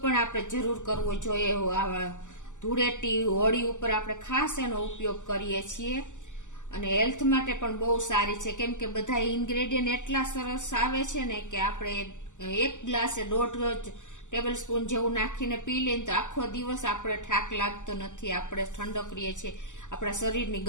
પણ આપણે જરૂર કરવો જોઈએ। ધૂળેટી હોળી ઉપર આપણે ખાસ એનો ઉપયોગ કરીએ છીએ અને હેલ્થ માટે પણ બહુ સારી છે, કેમ કે બધા ઇન્ગ્રેડિયન્ટ એટલા સરસ આવે છે ને કે આપણે એક ગ્લાસે 1.5 ટેબલ સ્પૂન જેવું નાખીને પી લઈએ તો આખો દિવસ આપણે થાક લાગતો નથી, આપણે ઠંડક રહીએ છીએ, આપણા શરીરની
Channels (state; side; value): late; right; 0.86 ms